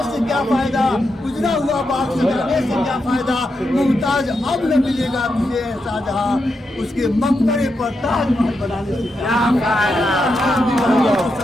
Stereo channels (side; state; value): both; normal; correlation 0.85